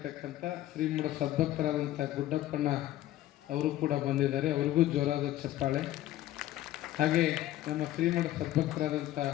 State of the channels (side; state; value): right; quieter; 14.4 dB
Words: ಶ್ರೀಮಠ ಸದ್ಭಕ್ತರಾದಂಥ ಗುಡ್ಡಪ್ಪಣ್ಣ ಅವರು ಕೂಡ ಬಂದಿದ್ದಾರೆ. ಅವ್ರಿಗೂ ಜೋರಾದ ಚಪ್ಪಾಳೆ. ಹಾಗೆ ನಮ್ಮ ಶ್ರೀಮಠ ಸದ್ಭಕ್ತರಾದಂಥ